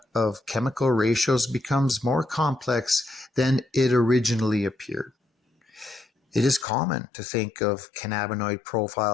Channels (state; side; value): drops out; right; at 6.7 s